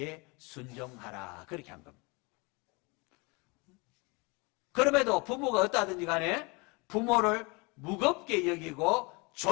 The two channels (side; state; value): right; quieter; 28.1 dB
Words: 순종하라 그렇게 한 겁니다. 그럼에도 부모가 어떠하든지 간에 부모를 무겁게 여기고